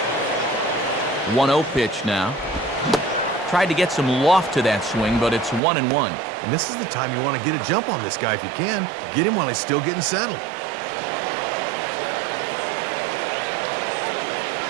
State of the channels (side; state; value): left; drops out; at 5.6 s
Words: One-0 pitch now. Tried to get some loft to that swing, but it's 1-1. And this is the time you want to get a jump on this guy if you can. Get him while he's still getting settled.